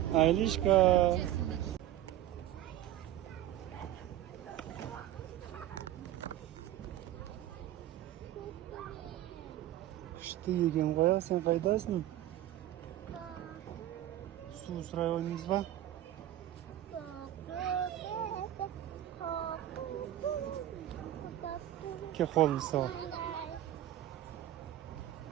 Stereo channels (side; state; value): left; quieter; 13.2 dB